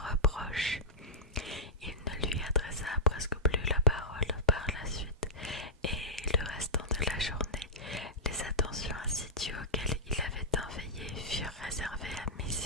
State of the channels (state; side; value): normal; both; correlation -0.13